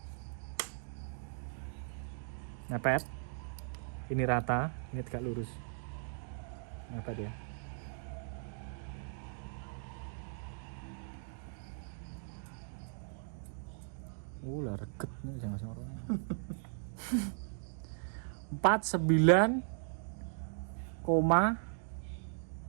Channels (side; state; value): left; silent; digital silence